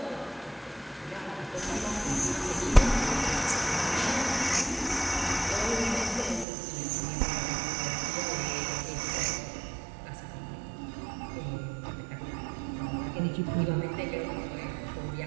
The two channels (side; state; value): left; drops out; at 6.5 s